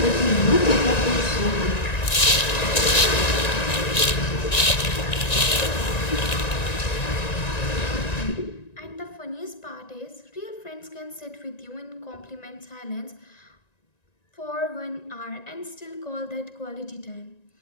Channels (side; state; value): right; late; 1.9 ms